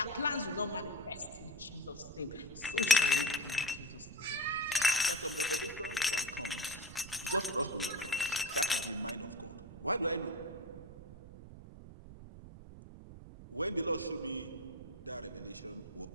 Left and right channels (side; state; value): right; noise; rumble, 14 dB below the sound